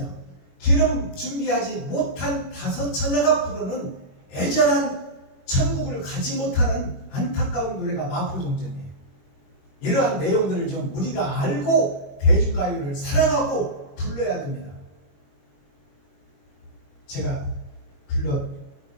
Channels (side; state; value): right; late; 21 ms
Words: 기름 준비하지 못한 다섯 처녀가 부르는 애절한 천국을 가지 못하는 안타까운 노래가 마포종점이에요. 이러한 내용들을 좀 우리가 알고 대중가요를 사랑하고 불러야 됩니다. 제가 불러